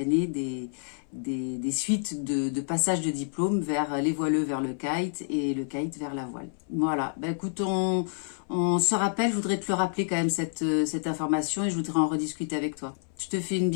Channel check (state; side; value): silent; right; 59 dB below the other